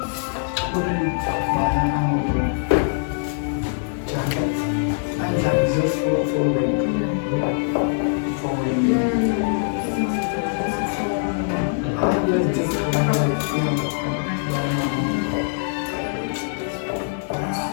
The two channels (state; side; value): silent; right; digital silence